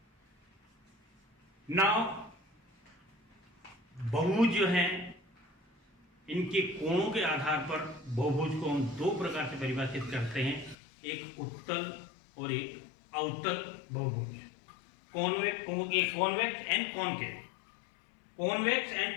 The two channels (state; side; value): drops out; right; at 10.8 s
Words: नाउ बहुभुज जो है इनके कोणों के आधार पर बहुभुज को हम 2 प्रकार से परिभाषित करते हैं, एक उत्तल और एक अवतल बहुभुज। Convex and concave. Convex